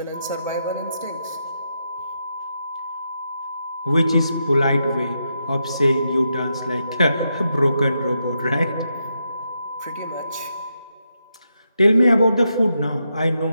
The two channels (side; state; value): both; inverted; correlation -0.83